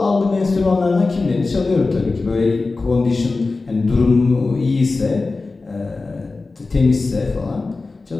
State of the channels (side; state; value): right; quieter; 3.7 dB